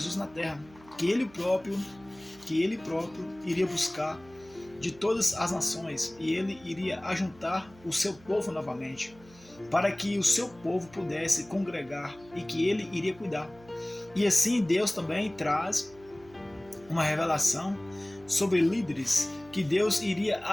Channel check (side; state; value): right; noise; hum, 24 dB below the sound